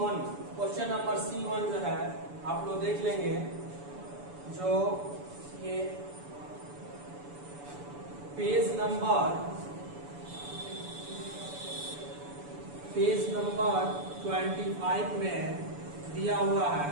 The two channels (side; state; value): left; late; 7.0 ms